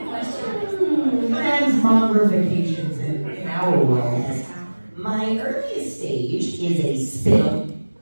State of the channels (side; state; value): both; inverted; correlation -1.00